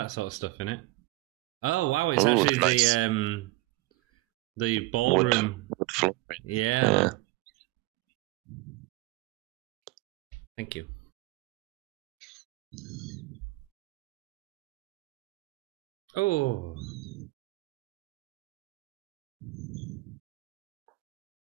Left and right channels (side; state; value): left; quieter; 20.3 dB